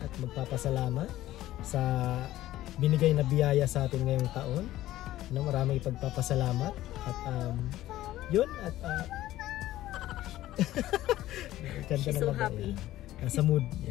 at magpapasalamat sa binigay na biyaya sa atin ngayong taon. Maraming ipagpapasalamat at yun at She's so happy. Nasa mood.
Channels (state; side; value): quieter; right; 14.8 dB